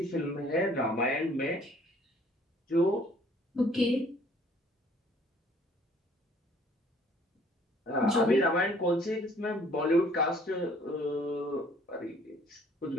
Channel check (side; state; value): both; normal; correlation 0.58